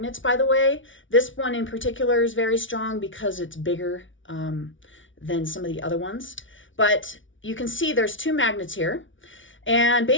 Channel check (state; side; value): late; right; 0.56 ms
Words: by the way. This one in particular is very strong because it's bigger than some of the other ones. But you can see there's two magnets here, and